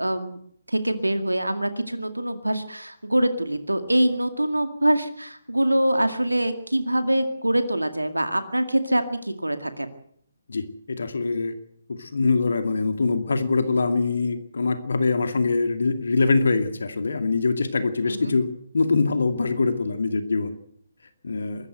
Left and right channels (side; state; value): both; inverted; correlation -0.93